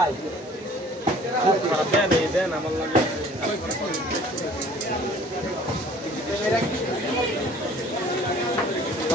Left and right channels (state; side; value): normal; both; correlation 0.51